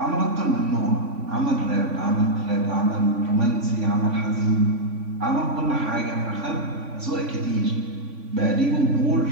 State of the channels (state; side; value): late; left; 3.5 ms